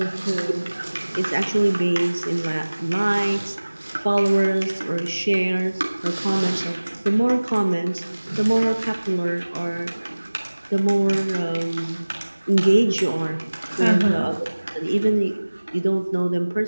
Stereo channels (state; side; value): inverted; both; correlation -1.00